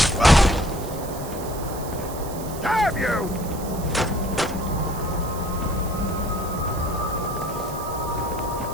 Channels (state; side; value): noise; right; hiss, 14 dB below the sound